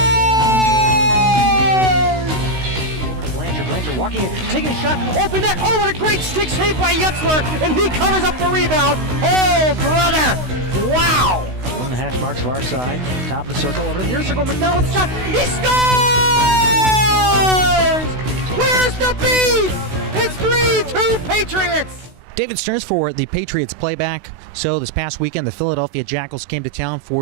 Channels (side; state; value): left; late; 16 ms